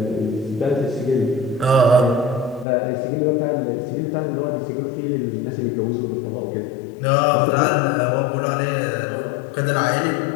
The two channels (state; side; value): drops out; right; at 2.7 s